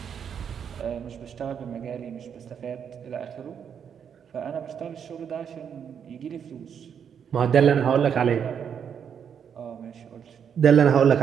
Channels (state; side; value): quieter; left; 7.8 dB